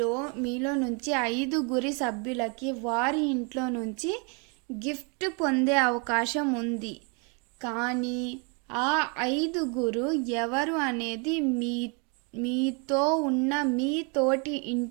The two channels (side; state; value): left; quieter; 34.8 dB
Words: మీలో నుంచి 5 సభ్యులకి వారి ఇంట్లో నుంచి గిఫ్ట్ పొందే అవకాశం ఉంది. కానీ ఆ 5 ఎవరు అనేది మీతో ఉన్న మీ తోటి